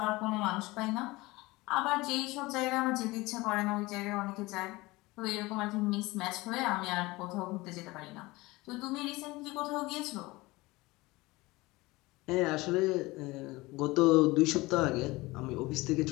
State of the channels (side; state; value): right; quieter; 21.3 dB